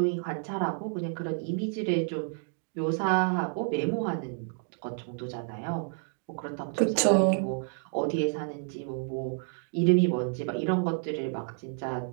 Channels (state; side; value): silent; left; 58 dB below the other